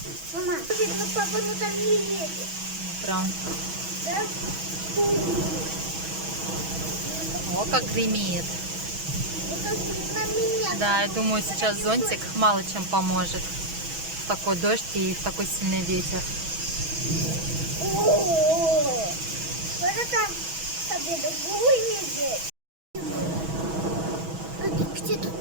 Мама, папа, ну там не едет. Прям. Да? О, как гремит. Вот на меня. Да, я думаю, сейчас зонтик мало чем поможет. В такой дождь и в такой сильный ветер. О, вот это тебе другой медведь. Где тут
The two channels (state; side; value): late; left; 6.2 ms